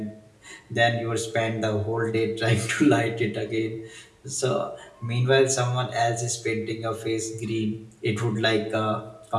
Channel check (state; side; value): identical; both; correlation 1.00